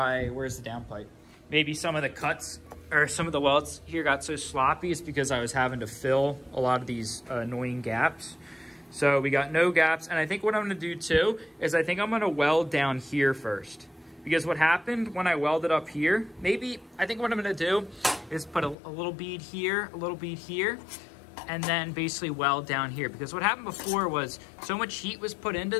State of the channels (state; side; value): drops out; right; at 18.8 s